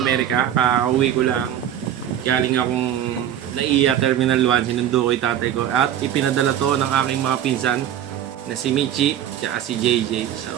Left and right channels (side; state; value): left; quieter; 10.8 dB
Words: Amerika. Kakauwi ko lang. Galing akong NAIA Terminal 1. Sinundo ko yung tatay ko. At ipinadala to ng aking mga pinsan na si Michi tsaka si JJ.